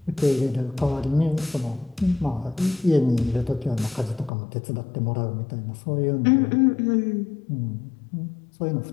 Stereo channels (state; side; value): drops out; right; at 4.3 s